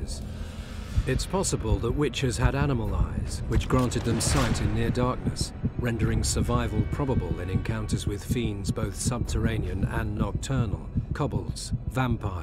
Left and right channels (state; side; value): identical; both; correlation 1.00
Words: It's possible that Witchers had animal eyes, which granted them sight in near darkness, rendering survival probable in encounters with fiends both subterranean and nocturnal, kobolds,